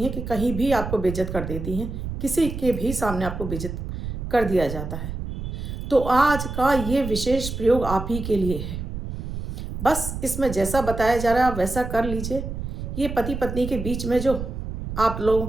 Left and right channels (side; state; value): right; noise; rumble, 6 dB below the sound